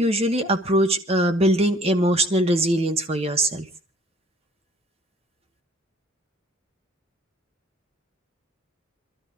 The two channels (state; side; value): normal; both; correlation 0.55